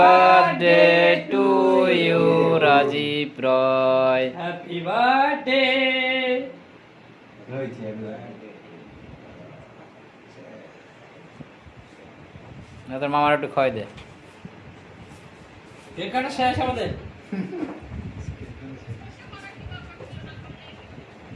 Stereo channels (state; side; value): identical; both; correlation 1.00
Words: to you Rajib Roy. Happy birthday হয়েছে না তোর মামার একটু খাওয়াই দে। কেক কাটা শেষ আমাদের।